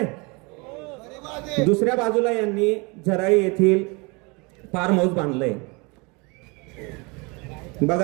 दुसऱ्या बाजूला यांनी झराळी येथील फार्म हाऊस बांधलंय.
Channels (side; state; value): left; quieter; 28.6 dB